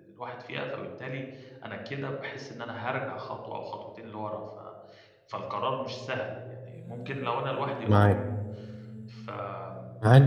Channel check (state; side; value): identical; both; correlation 1.00